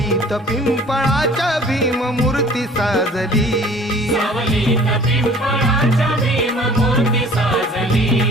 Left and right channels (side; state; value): both; normal; correlation 0.50